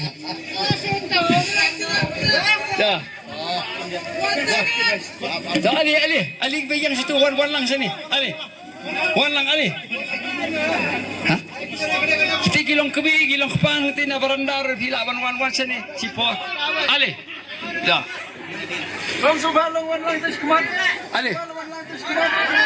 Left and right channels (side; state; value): both; identical; correlation 1.00